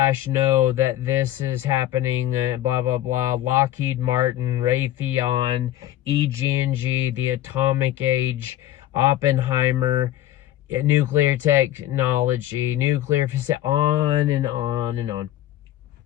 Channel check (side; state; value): right; quieter; 13.3 dB